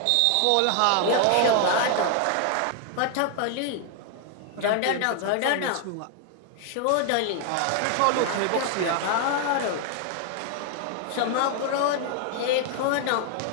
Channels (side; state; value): both; different; correlation 0.00